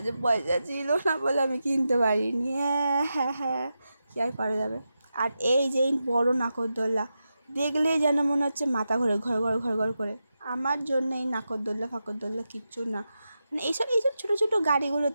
পয়সা ছিল না বলে আমি কিনতে পারিনি। হ্যাঁ, কী আর করা যাবে। আর এই যে বড় নাগরদোল্লা, দেখলেই যেন মনে হচ্ছে মাথা ঘোরে ঘর ঘর ঘর ঘর করে। আমার জন্য এই নাগরদোল্লা ফাকরদোল্লা কিচ্ছু না, মানে এইসব ছোটো ছোটো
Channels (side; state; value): both; inverted; correlation -0.89